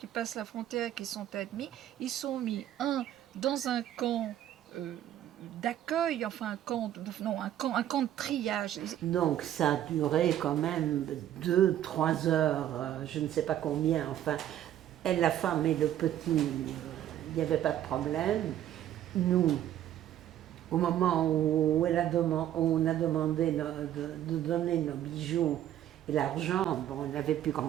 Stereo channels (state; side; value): quieter; left; 11.6 dB